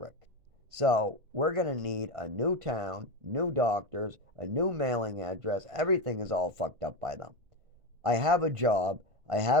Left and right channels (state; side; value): late; left; 1.5 ms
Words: So, we're going to need a new town, new doctors, a new mailing address. Everything is all fucked up by them. I have a job. I